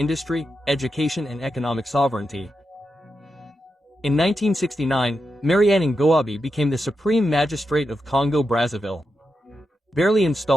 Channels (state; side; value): normal; both; correlation 0.87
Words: education and economic sovereignty. In 1969, Mariane Ngouabi became the Supreme Magistrate of Congo-Brazzaville. Barely